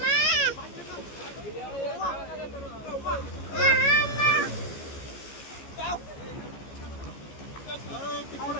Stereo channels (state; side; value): late; right; 14 ms